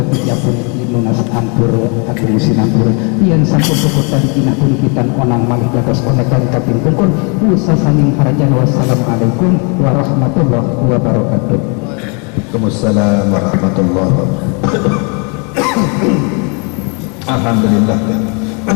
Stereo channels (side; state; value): right; quieter; 34.6 dB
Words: tiga puluh nunas ampur atau musim ampur yang sampun pokok dari kinah kulikitan onang malih gagas konekan kaping pungkun usaha saning harajan. Wassalamualaikum warahmatullahi wabarakatuh. Waalaikumsalam warahmatullahi wabarakatuh. Alhamdulillah.